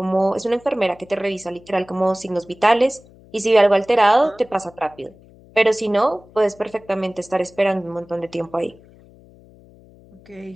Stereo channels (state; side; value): noise; left; hum, 25 dB below the sound